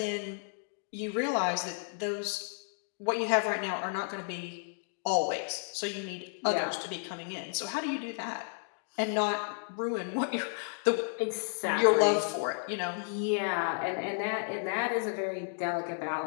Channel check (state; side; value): silent; right; digital silence